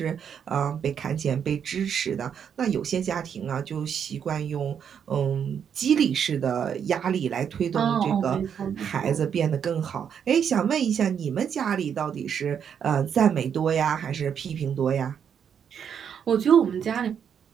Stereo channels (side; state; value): left; quieter; 7.9 dB